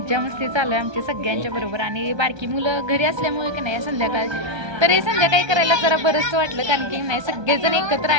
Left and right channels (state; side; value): late; left; 1.2 ms